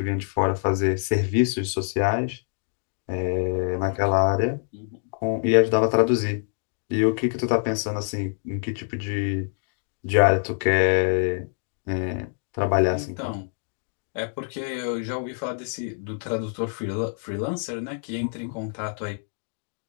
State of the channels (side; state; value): right; silent; 61 dB below the other